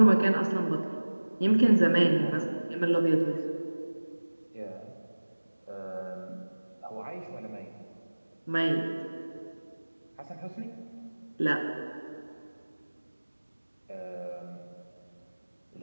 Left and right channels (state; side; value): inverted; both; correlation -1.00